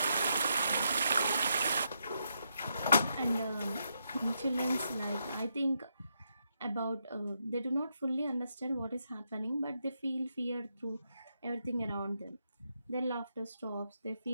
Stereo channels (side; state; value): both; inverted; correlation -0.81